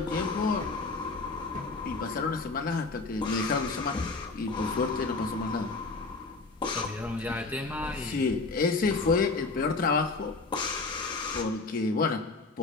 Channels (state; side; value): quieter; right; 3.8 dB